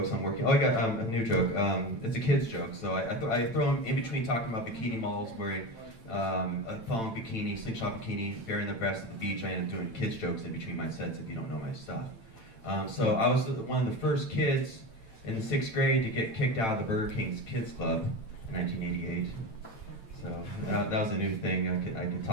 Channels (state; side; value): late; right; 8.9 ms